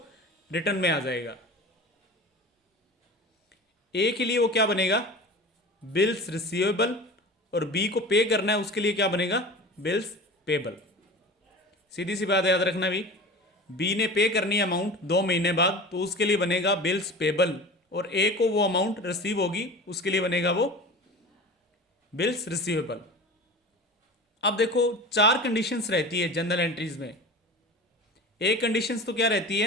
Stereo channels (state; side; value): normal; both; correlation 0.35